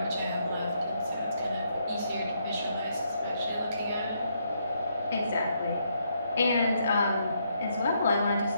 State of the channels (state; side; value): inverted; both; correlation -0.76